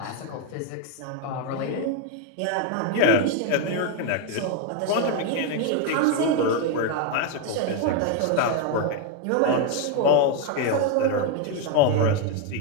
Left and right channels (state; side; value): different; both; correlation 0.01